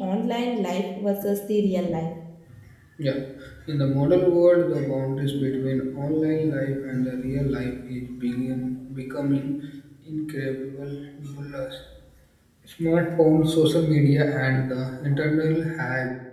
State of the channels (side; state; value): both; identical; correlation 1.00